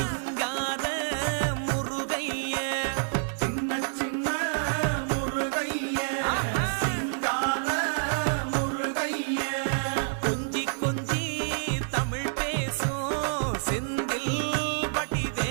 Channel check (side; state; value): left; silent; 59 dB below the other